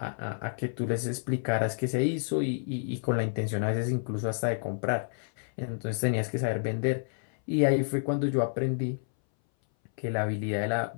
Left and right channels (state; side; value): silent; right; 58 dB below the other